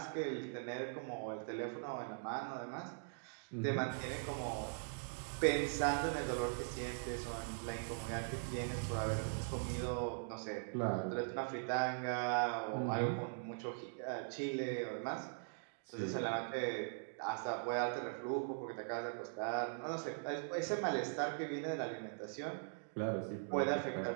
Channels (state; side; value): silent; left; digital silence